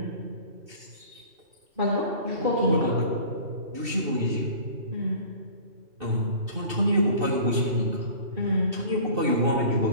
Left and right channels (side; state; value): left; late; 2.7 ms